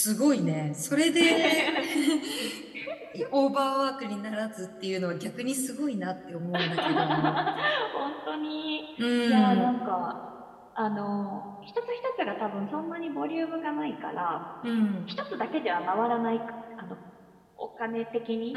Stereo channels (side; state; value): both; identical; correlation 1.00